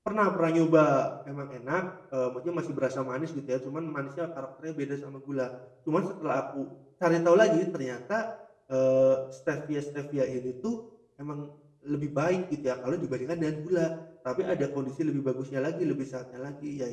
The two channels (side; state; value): both; identical; correlation 1.00